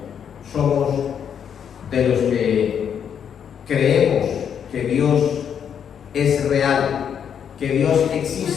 somos de los que creemos que Dios es real, que Dios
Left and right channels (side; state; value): right; quieter; 8.1 dB